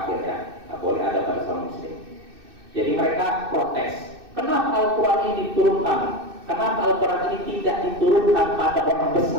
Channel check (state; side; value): late; left; 2.6 ms